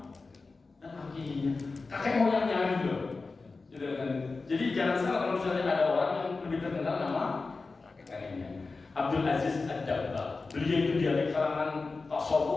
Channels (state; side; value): quieter; right; 3.9 dB